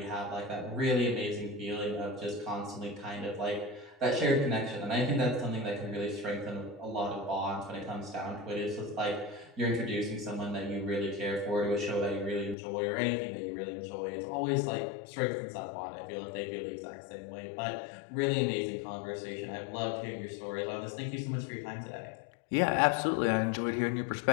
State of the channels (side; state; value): right; drops out; at 12.6 s